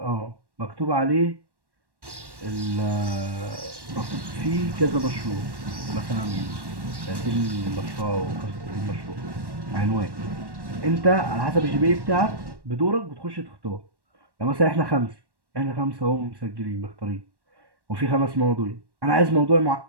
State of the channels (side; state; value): left; late; 1.1 ms